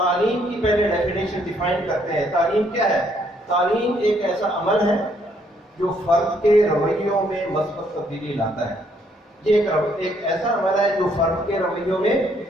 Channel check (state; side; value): normal; both; correlation 0.69